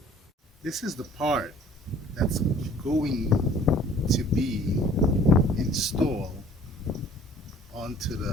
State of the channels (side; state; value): both; normal; correlation 0.52